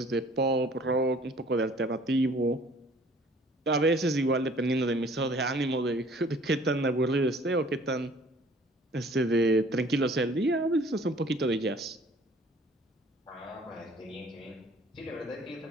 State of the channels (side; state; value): both; normal; correlation 0.53